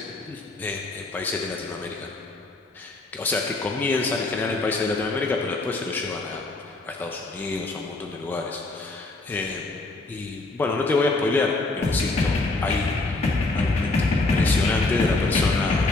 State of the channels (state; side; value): quieter; right; 3.2 dB